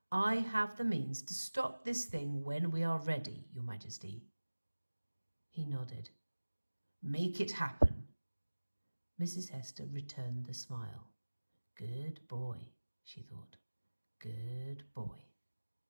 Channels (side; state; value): both; inverted; correlation -1.00